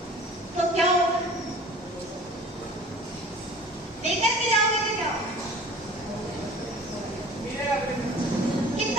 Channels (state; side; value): normal; both; correlation 0.45